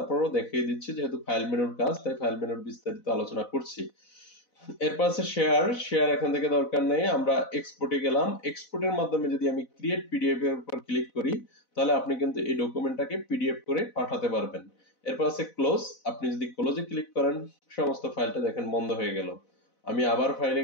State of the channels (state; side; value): late; right; 4.0 ms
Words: দেখিয়ে দিচ্ছি যেহেতু ফাইল মেনুর কাজ তাই ফাইল মেনুর বিস্তারিত আলোচনা করছি। এরপর আছে শেয়ার এখান থেকে দরকার নেই, আমরা এক্সপোর্টে গেলাম। এক্সপোর্টের মাধ্যমে যদি আমি ক্রিয়েট পিডিএফ এর উপর ক্লিক করি তাহলে আপনি কিন্তু এই ডকুমেন্টটাকে পিডিএফ করে পাঠাতে পারবেন। এরপর আছে ক্লোজ, আপনি যদি ক্লোজে ক্লিক করেন সমস্ত ফাইলটা দেখেন বন্ধ হয়ে গেল। আমি আবার ফাইলে